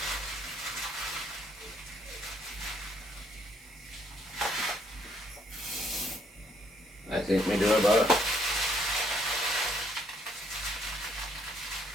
I think we do about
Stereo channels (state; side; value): normal; both; correlation 0.68